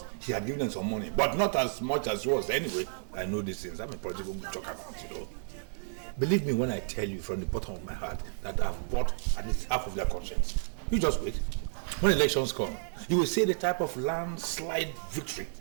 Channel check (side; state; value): left; silent; 57 dB below the other